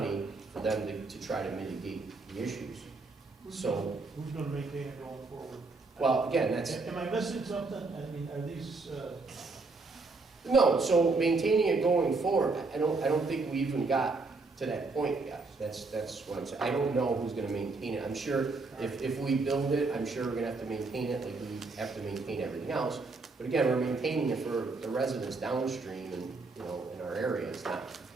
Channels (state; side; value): quieter; left; 3.8 dB